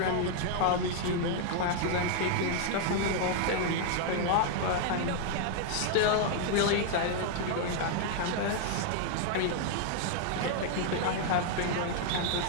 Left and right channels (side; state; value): both; different; correlation 0.00